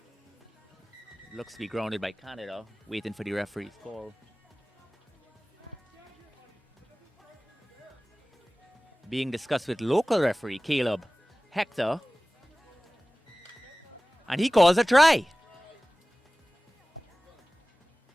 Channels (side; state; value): both; normal; correlation 0.98